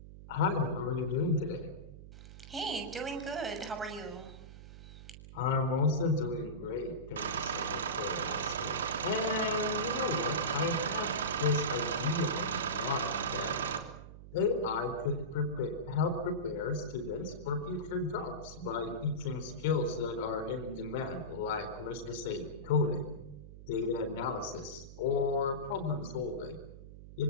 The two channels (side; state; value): right; noise; hum, 15 dB below the sound